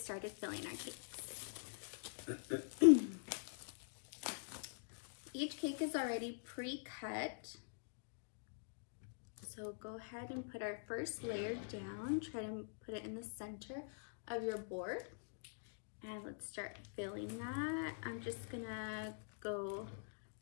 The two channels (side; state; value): right; silent; digital silence